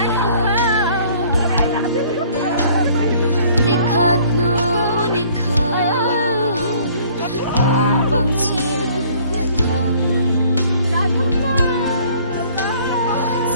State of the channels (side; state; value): both; inverted; correlation -0.56